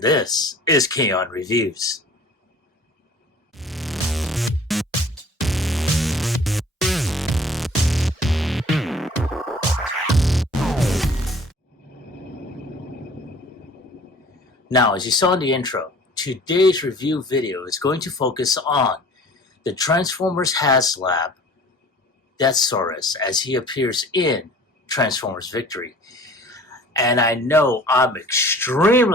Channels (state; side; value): normal; both; correlation 0.48